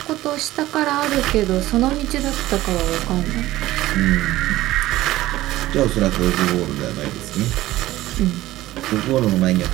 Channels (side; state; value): left; quieter; 16.1 dB